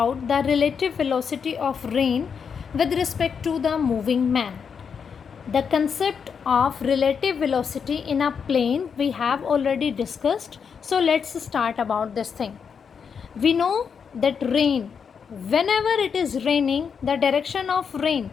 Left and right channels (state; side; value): quieter; right; 6.5 dB